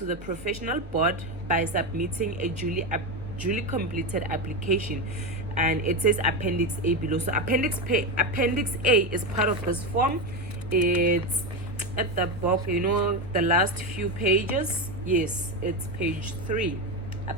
the professional board by submitting a duly completed application, and it says Appendix A below. So Appendix A is part of this form. It's at the back, the last few pages. Yes, it's page 3,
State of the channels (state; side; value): normal; both; correlation 0.14